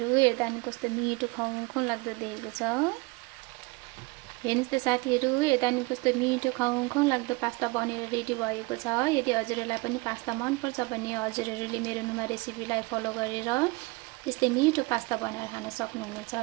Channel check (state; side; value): quieter; left; 25.5 dB